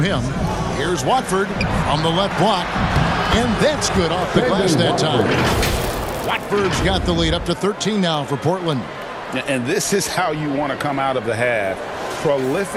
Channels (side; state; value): both; identical; correlation 1.00